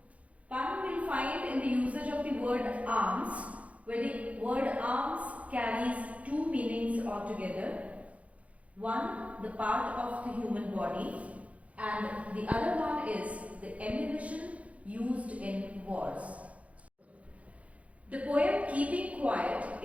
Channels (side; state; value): left; late; 0.065 ms